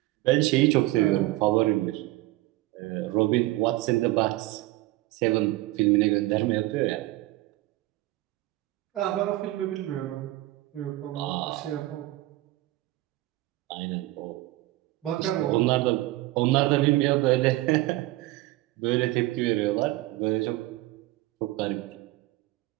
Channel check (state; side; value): quieter; left; 18.2 dB